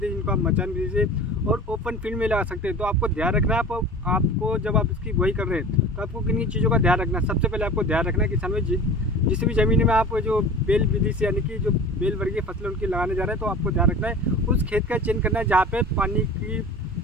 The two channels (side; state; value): both; normal; correlation 0.37